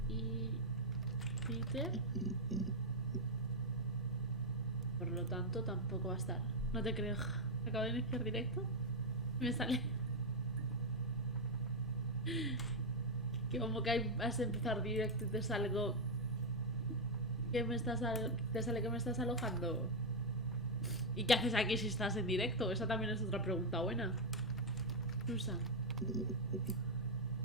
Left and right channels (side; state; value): both; normal; correlation -0.01